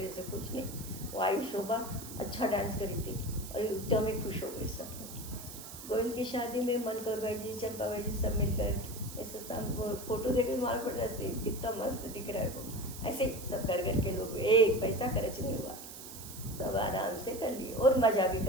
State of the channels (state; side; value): noise; right; hiss, 12 dB below the sound